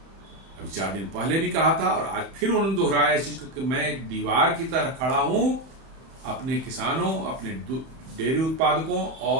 अभी 4 दिन पहले भी कहा था और आज फिर उन्होंने दोहराया इस चीज को कि मैं एक दीवार की तरह खड़ा हूं अपने किसानों, अपने डेयरी उत्पादकों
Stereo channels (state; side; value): late; left; 31 ms